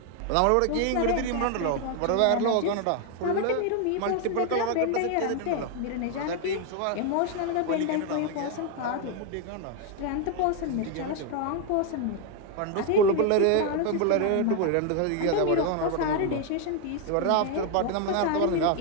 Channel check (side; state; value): both; different; correlation 0.01